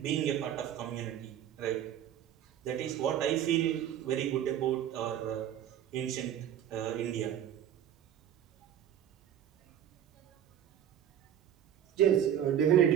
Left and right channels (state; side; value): quieter; left; 10.2 dB